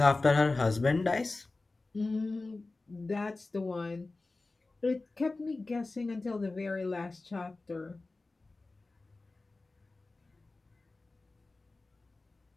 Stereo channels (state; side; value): quieter; right; 3.3 dB